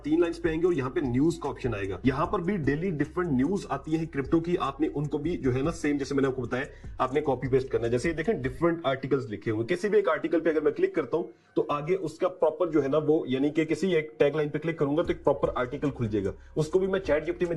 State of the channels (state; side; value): identical; both; correlation 1.00